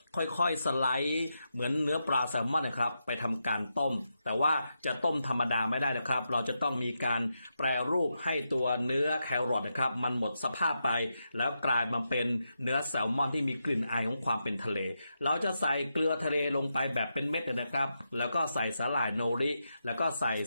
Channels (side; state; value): both; inverted; correlation -0.86